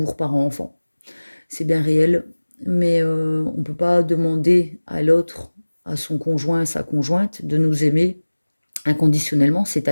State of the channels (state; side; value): inverted; both; correlation -1.00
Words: parent-enfant. C'est bien réel, mais on ne peut pas demander à l'autre, à son conjoint, à sa conjointe, de nous aimer inconditionnellement,